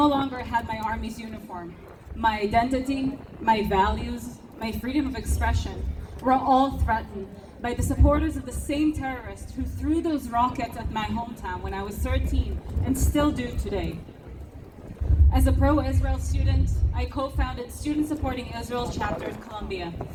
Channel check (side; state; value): both; identical; correlation 1.00